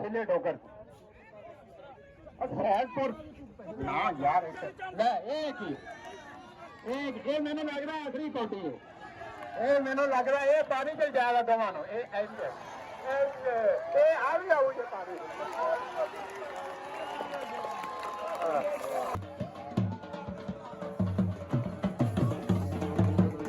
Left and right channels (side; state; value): both; identical; correlation 1.00